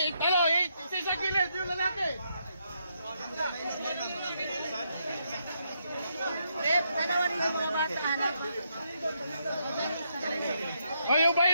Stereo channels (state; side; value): inverted; both; correlation -0.78